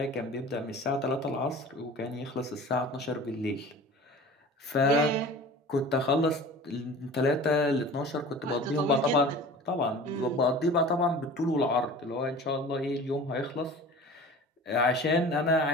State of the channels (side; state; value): both; normal; correlation 0.40